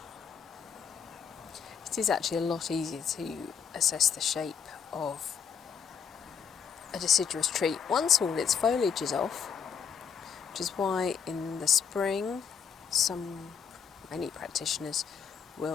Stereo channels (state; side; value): quieter; right; 7.1 dB